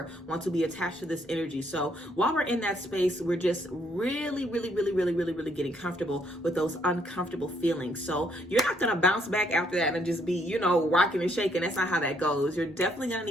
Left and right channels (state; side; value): normal; both; correlation 0.70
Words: want to be attached to this energy. So while we're in that space, we're just really getting comfortable with those uncomfortable feelings. So you're not going to bounce back after that and just be, you know, rocking and shaking. That's not how that goes. You're definitely going to